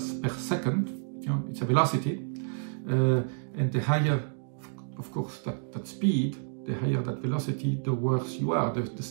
per second. It's a velocity, and the higher, of course, that speed, the higher that velocity, the worse you are, the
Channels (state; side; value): silent; left; digital silence